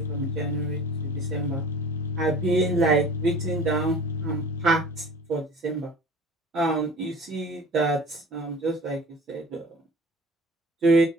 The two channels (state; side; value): normal; both; correlation 0.42